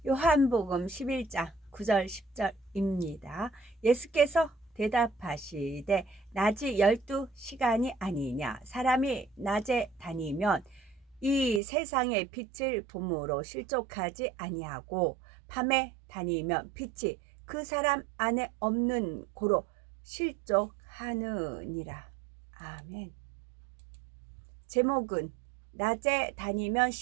요한복음 11장 9절 10절입니다. 예수께서 대답하시되 낮이 12시간이 아니냐. 사람이 낮에 다니면 이 세상의 빛을 봄으로 실족하지 아니하고 밤에 다니면 빛이 그 사람 안에 없는 고로 실족하느니라. 아멘. 제목은 낮에 다니면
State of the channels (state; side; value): drops out; left; at 11.6 s